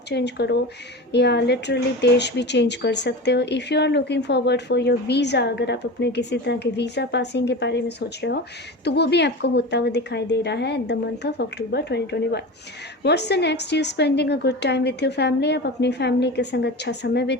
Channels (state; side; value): normal; both; correlation 0.29